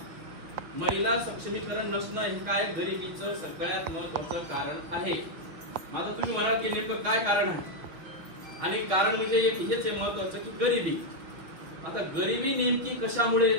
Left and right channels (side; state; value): left; late; 6.0 ms